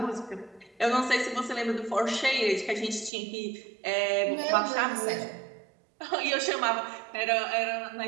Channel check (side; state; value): left; drops out; at 3.1 s